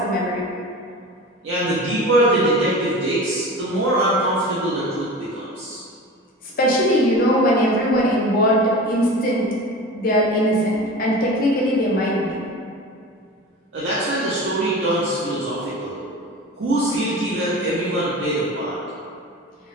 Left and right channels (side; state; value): both; normal; correlation 0.34